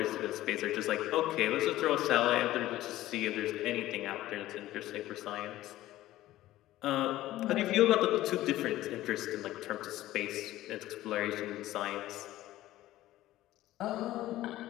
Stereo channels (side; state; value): right; quieter; 15.3 dB